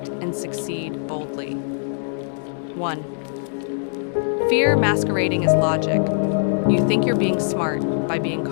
and succeed boldly. 1. Fear masquerading as logic. You think you're being smart by being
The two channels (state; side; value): silent; right; digital silence